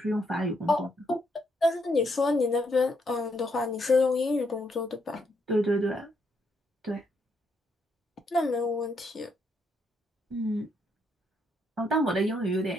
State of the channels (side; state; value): both; normal; correlation 0.76